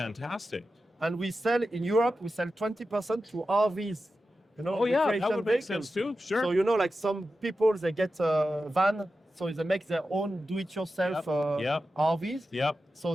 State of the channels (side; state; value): both; normal; correlation 0.92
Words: And we sell in Europe, we sell 20% to RVs. Oh yeah, that recreation would make vehicles. sense too. Sure. So like some people, they get a van, so they make their own do-it-yourself Yep. RVs. Yep.